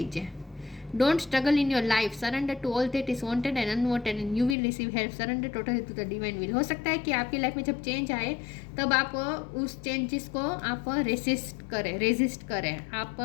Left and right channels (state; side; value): drops out; right; at 4.5 s